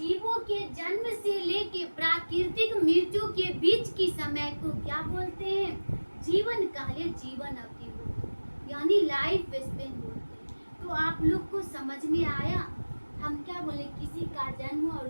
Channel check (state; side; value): inverted; both; correlation -1.00